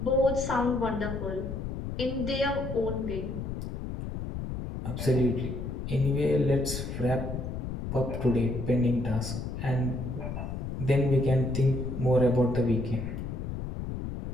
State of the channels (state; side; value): noise; left; rumble, 5 dB below the sound